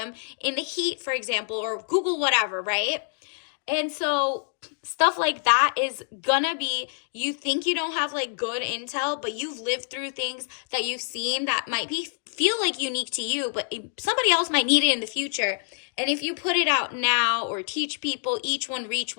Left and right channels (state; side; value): silent; right; digital silence